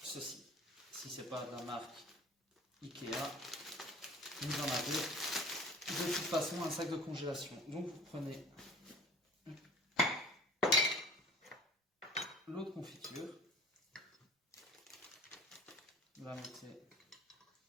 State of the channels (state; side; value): normal; both; correlation 0.45